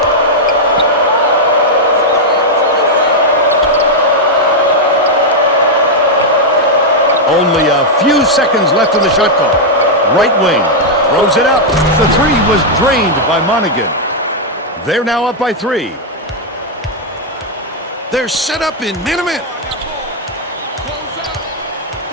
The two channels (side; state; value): both; normal; correlation -0.03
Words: Only a few seconds left in the shot clock. Right wing. Throws it up. The 3 was drained by Monaghan. They're now up by 3. They're set up in man-to-man.